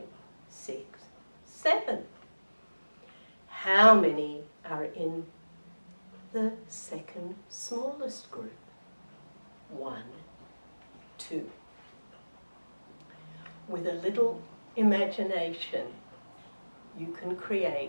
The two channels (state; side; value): inverted; both; correlation -1.00